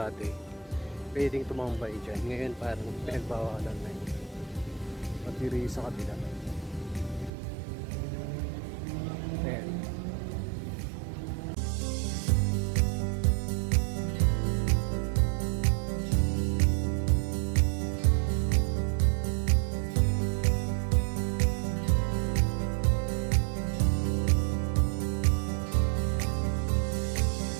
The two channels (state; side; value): drops out; left; at 7.3 s